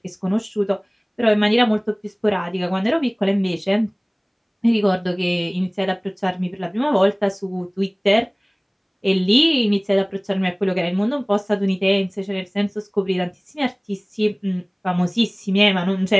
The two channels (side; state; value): both; identical; correlation 1.00